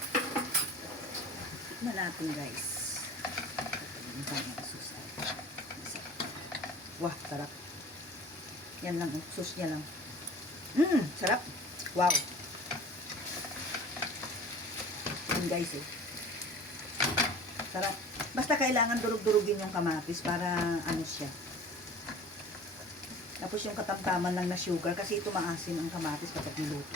Tikman natin, guys. Yung kanyang sauce ay masarap. Wah, sarap. Yan lang, sauce niya lang. Sarap. Wow. Yan, guys, eh. Sarap. Basta kailangan durug-durugin yung kamatis para ano siya. Tapos yung katamtaman lang na sugar kasi ito maasim ang kamatis kapag niluto.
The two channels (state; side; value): normal; both; correlation 0.43